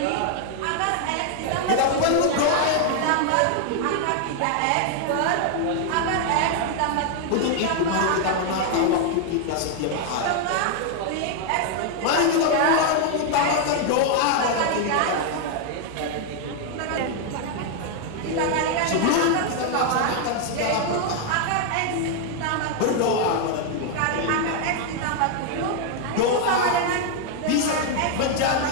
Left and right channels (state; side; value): different; both; correlation 0.00